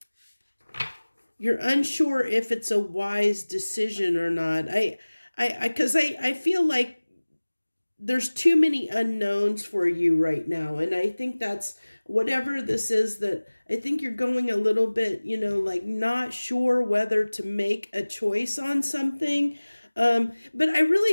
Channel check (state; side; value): inverted; both; correlation -1.00